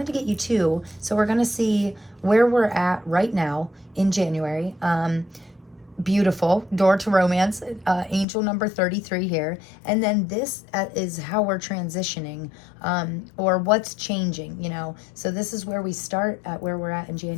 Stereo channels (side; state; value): right; drops out; at 8.2 s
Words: to get you 2. So we're going to see where we're at right now in January. Beautiful. Door to romance. Angel number 33 here. And then this is how we're transitioning, or what's changing, you know. So this is where we start at where we're at in